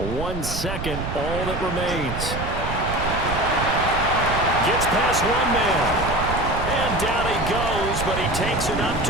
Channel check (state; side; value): noise; right; rumble, 5 dB below the sound